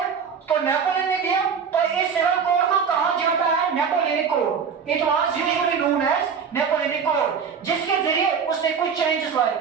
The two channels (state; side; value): quieter; left; 6.5 dB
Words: तो नेपोलियन ने दिया। तो इस सिविल कोड को कहां जोड़ा है? Napoleonic code. It was usually known as Napoleonic code, जिसके जरिए उसने कुछ चेंजेस लाए।